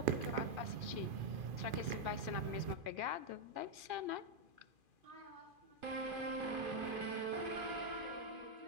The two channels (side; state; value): left; late; 2.5 ms